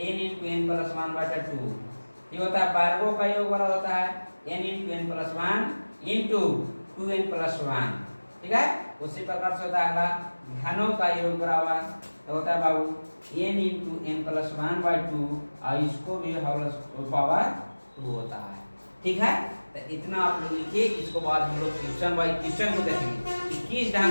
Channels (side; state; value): both; inverted; correlation -1.00